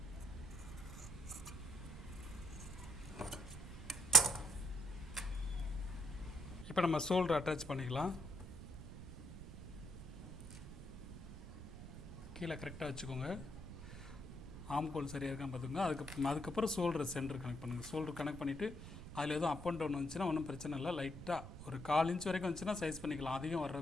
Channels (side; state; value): right; noise; rumble, 11 dB below the sound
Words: இப்போ நம்ம ஷோல்டர் அட்டாச் பண்ணிக்கலாம். கீழே கரெக்டாக வச்சுக்கோங்க. ஆம்கோல் சரியாக இருக்கான்னு பார்த்துக்கோங்க. அதுக்கப்புறம் ஷோல்டர் சென்டர் கனெக்ட் பண்ணுங்கள். ஷோல்டர் கனெக்ட் பண்ணிவிட்டு அதில் எதுவும் அப் அண்ட் டவுன் வந்துச்சுன்னா ஒன்றும் பிரச்சனை இல்லை. லைட்டாக ஒரு 1/4 இன்ச் வரைக்கும் வந்துச்சுன்னா சைஸ் பண்ணிக்கலாம்.